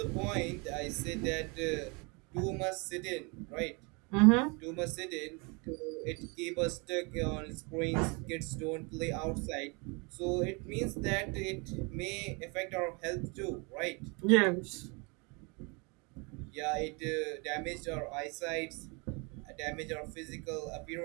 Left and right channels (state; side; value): quieter; left; 30.5 dB